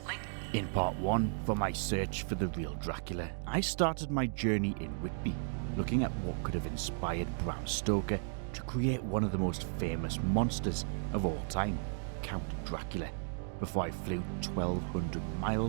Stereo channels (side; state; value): left; silent; digital silence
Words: In part 1, for my search for the real Dracula, I started my journey in Whitby, looking at what could have inspired Bram Stoker to create one of the most famous monsters of all time, Count Dracula, before I flew 1,200